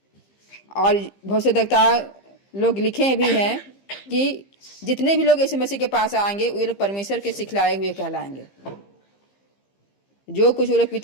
और भविष्यद्वक्ता लोग लिखे भी हैं कि जितने भी लोग यीशु मसीह के पास आएंगे वे लोग परमेश्वर के सिखलाए हुए कहलाएंगे। जो कुछ वो लोग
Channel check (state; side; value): late; right; 15 ms